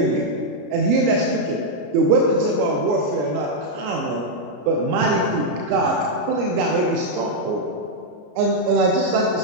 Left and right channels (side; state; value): left; late; 33 ms